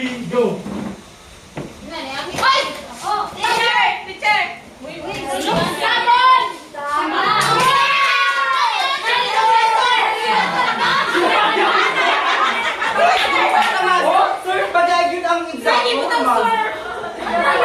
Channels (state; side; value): identical; both; correlation 1.00